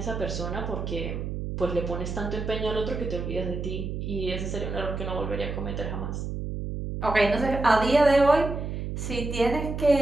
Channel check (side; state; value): right; noise; hum, 4 dB below the sound